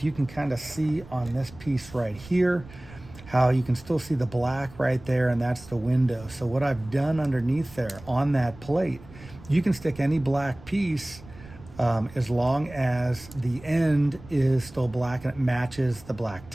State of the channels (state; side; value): noise; right; rumble, 19 dB below the sound